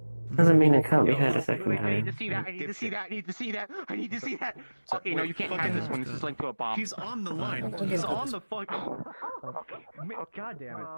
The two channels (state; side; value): inverted; both; correlation -1.00